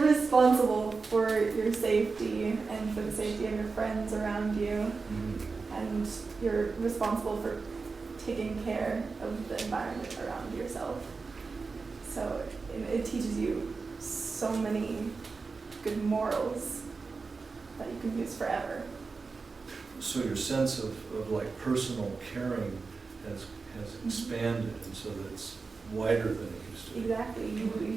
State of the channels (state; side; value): quieter; left; 4.4 dB